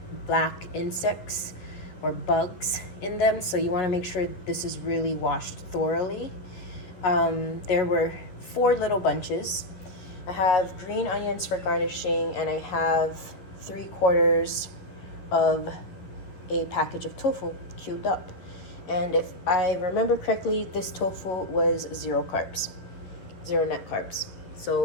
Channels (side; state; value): right; late; 11 ms